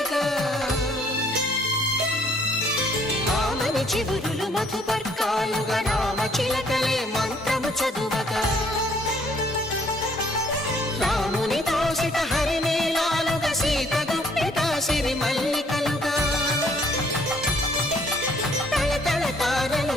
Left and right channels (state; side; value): normal; both; correlation 0.63